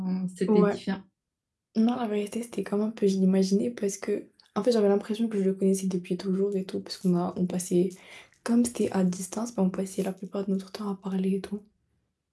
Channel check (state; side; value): identical; both; correlation 1.00